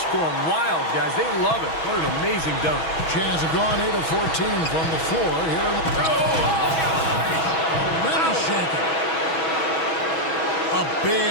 going wild, guys. They love it. What an amazing dunk. Jazz have gone 8 of 14 from the floor here in the. Shaking. A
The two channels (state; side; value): late; right; 6.2 ms